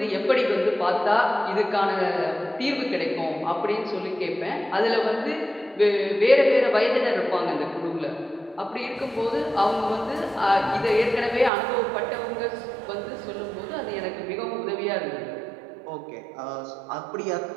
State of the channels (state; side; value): drops out; left; at 11.5 s